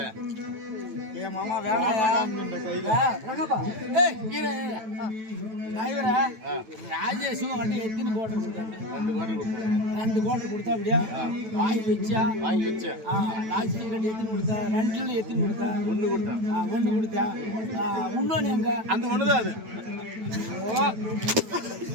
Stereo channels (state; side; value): late; left; 9.2 ms